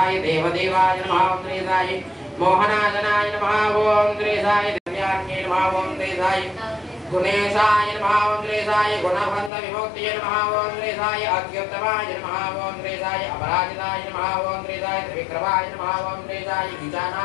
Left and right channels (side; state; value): right; drops out; at 9.5 s